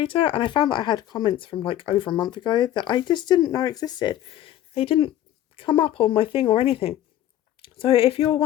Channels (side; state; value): right; quieter; 12.5 dB